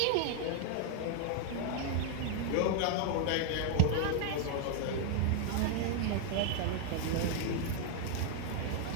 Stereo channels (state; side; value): different; both; correlation 0.00